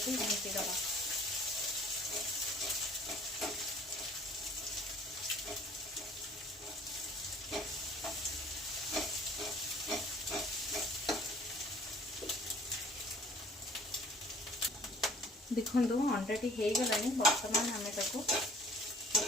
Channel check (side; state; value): both; normal; correlation 0.53